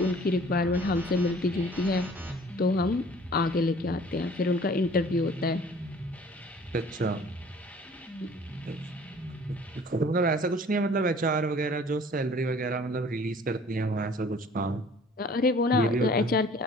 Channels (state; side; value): normal; both; correlation 0.51